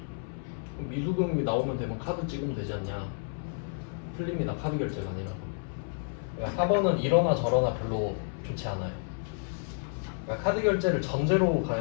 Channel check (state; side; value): silent; right; 58 dB below the other